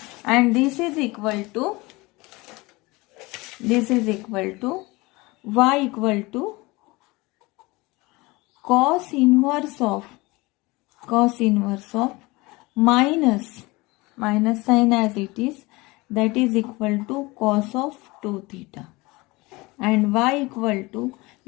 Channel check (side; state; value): right; quieter; 22.9 dB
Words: and this is equal to y equal to cos inverse of minus sign as it is, that is equal to cos of 2 theta, and y equal to,